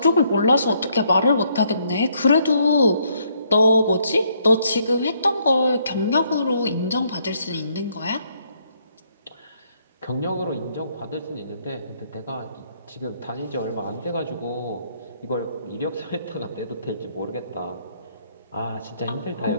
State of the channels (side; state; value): both; inverted; correlation -0.71